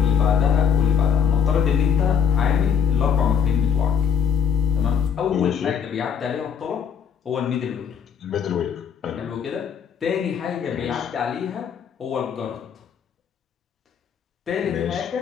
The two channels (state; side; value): quieter; right; 7.6 dB